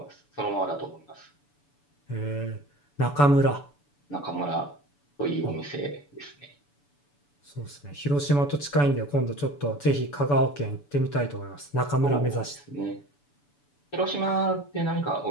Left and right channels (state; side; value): late; right; 7.0 ms